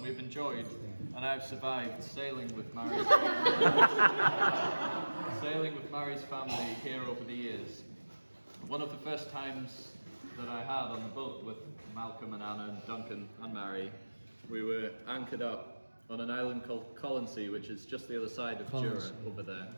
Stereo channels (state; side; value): inverted; both; correlation -1.00